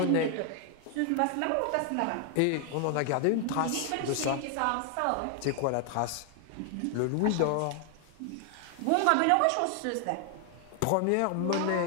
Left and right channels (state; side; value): different; both; correlation 0.00